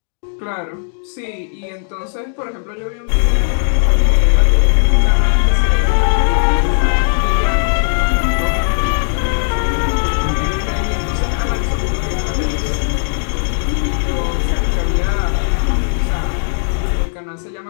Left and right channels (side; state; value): right; silent; digital silence